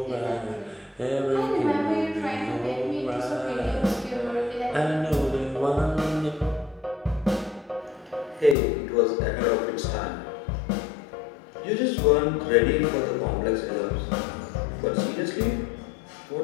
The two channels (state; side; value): drops out; right; at 8.6 s